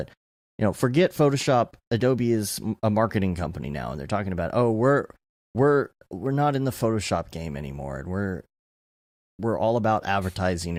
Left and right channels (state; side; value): identical; both; correlation 1.00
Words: you know, forget Photoshop. Adobe is a marketing company now, and they're talking about, oh, we're not in the Photoshop game anymore, and we're all about advertising